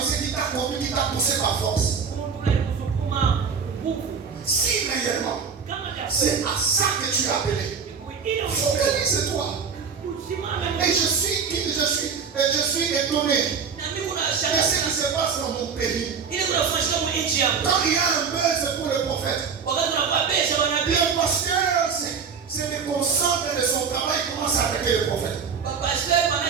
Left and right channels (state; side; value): quieter; left; 6.1 dB